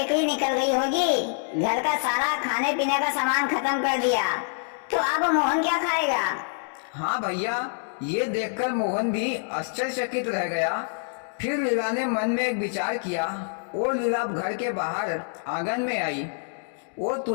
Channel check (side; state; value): right; silent; digital silence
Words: ही निकल गई होगी। घर का सारा खाने पीने का सामान खत्म कर दिया, तो अब मोहन क्या खाएगा? हाँ भैया, ये देखकर मोहन भी आश्चर्यचकित रह गया। फिर लीला ने मन में एक विचार किया और लीला घर के बाहर आंगन में आई और